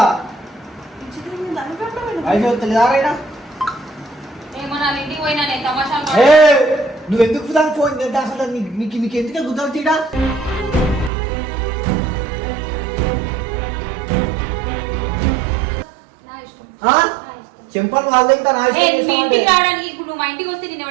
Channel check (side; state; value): left; drops out; at 11.1 s